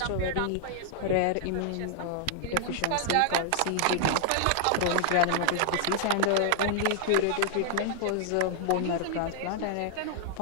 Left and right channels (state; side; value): different; both; correlation -0.01